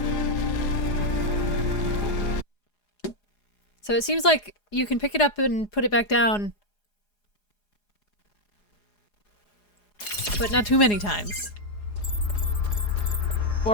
So it seems like you can pick it up and put it back down, but not too many times.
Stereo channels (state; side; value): late; right; 4.8 ms